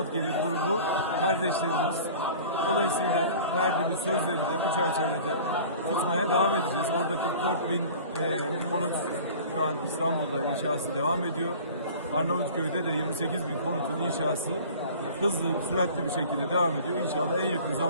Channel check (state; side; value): inverted; both; correlation -0.43